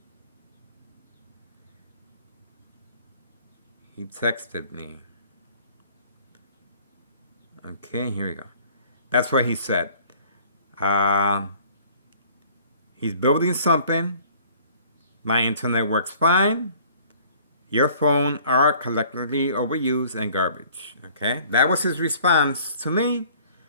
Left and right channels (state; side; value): inverted; both; correlation -0.54